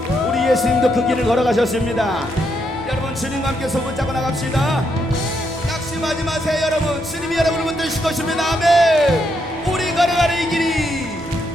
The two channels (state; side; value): normal; both; correlation 0.78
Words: 우리 예수님도 그 길을 걸어가셨습니다. 여러분 주님과 함께 손붙잡고 나갑시다. 낙심하지 마세요 여러분. 주님이 여러분을 붙드실 것입니다. 아멘. 우리 걸어가는 이 길이,